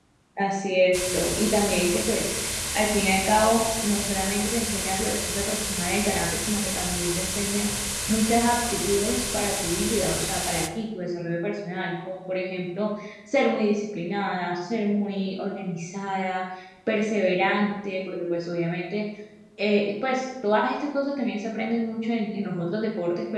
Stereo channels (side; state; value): both; identical; correlation 1.00